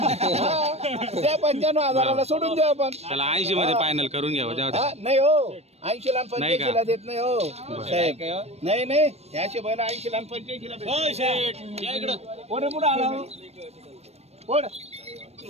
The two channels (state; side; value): late; left; 0.31 ms